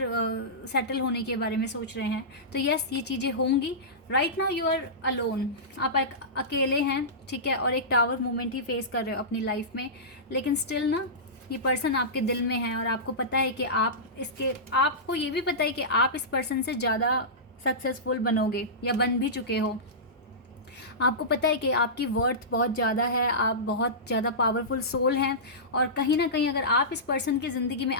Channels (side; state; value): both; normal; correlation -0.17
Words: सेटल होने के बारे में सोच रहे हैं। तो यस, ये चीज़ें होंगी। Right now you are alone, आप अकेले हैं, ठीक है, और एक टावर मूवमेंट ही फेस कर रहे हो अपनी लाइफ में, लेकिन स्टिल ना ये पर्सन आपके दिल में है, और आपको पता है कि आपको ये भी पता है कि आप इस पर्सन से ज़्यादा सक्सेसफुल बनोगे या बन भी चुके हो। आपको पता है कि आपकी वर्थ बहुत ज़्यादा है, आप बहुत ज़्यादा पावरफुल सोल हैं, और कहीं ना कहीं अगर आप इस पर्सन की ज़िंदगी में